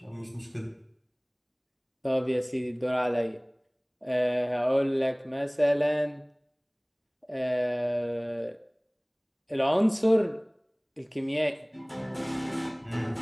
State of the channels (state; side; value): identical; both; correlation 1.00